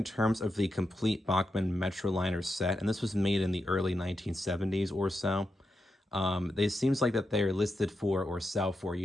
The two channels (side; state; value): both; normal; correlation 0.87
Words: terms of the complete Bachmann Metroliner set, and this was made in the early 1970s or so, it seems like that they are listed for or sell for